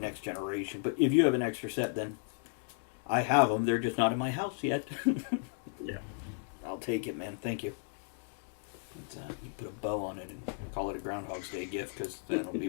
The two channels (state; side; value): silent; right; 55 dB below the other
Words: Generation. But if you have an extra set, then I have them. They're just not in my house yet. Yeah. I'll take it, man. Thank you. You put a bow on it and call it a Groundhog's Day gift, because that'll be